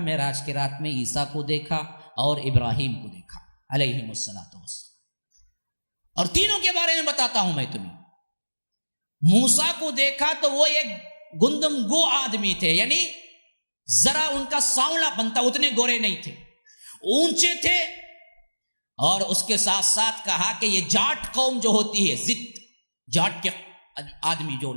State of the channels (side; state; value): both; inverted; correlation -1.00